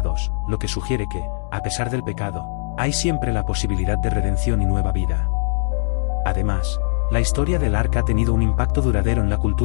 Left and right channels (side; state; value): right; silent; digital silence